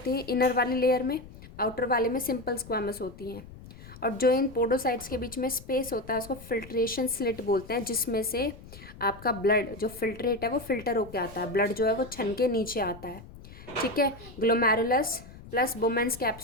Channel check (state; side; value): noise; left; rumble, 17 dB below the sound